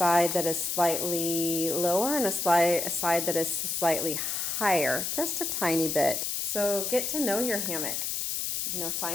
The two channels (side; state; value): left; noise; hiss, 1 dB below the sound